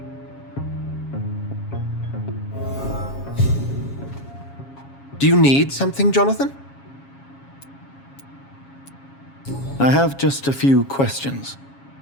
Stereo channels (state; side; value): late; right; 7.3 ms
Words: Do you need something, Jonathan? I have just a few questions.